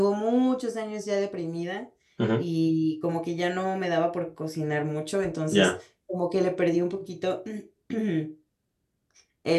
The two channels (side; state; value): both; identical; correlation 1.00